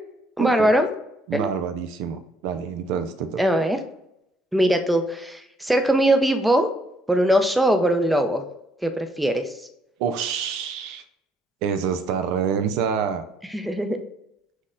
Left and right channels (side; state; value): both; normal; correlation 0.69